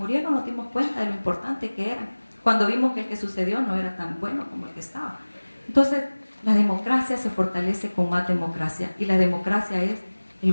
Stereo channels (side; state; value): both; inverted; correlation -1.00